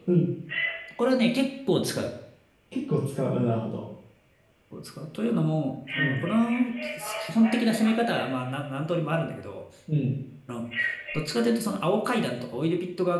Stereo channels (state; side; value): identical; both; correlation 1.00